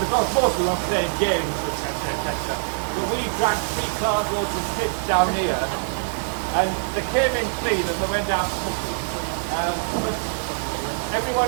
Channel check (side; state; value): left; silent; digital silence